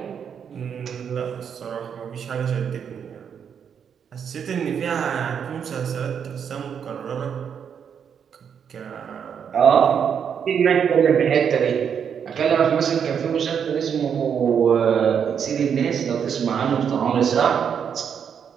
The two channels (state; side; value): quieter; left; 7.6 dB